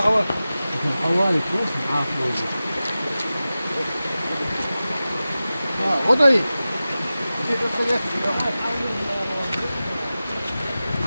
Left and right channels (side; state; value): both; inverted; correlation -0.95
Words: Халаны просто афрозы. Вот они.